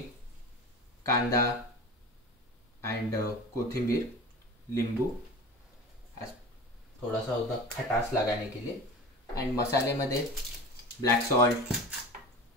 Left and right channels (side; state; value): both; normal; correlation 0.33